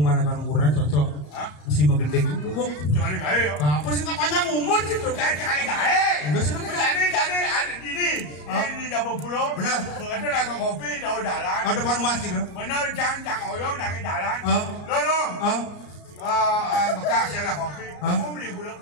kan ukuran cocok. Mesti menggendeng itu bung. Jangan gawe yo. Apa sih nggak panjang umur sih tuh? Jangan gawe. Udah sih Jadi ada ini Jawa Pulau. Benar. Begitu nak kopi jauh jalan. Ada depan masjid tuh. Benar jangan oyong dari jalan. Lo. Bekas lah kopi. Kamu beli pula.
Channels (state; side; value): late; right; 33 ms